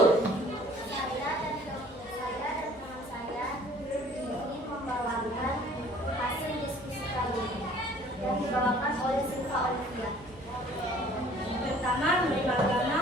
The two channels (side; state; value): right; noise; hum, 23 dB below the sound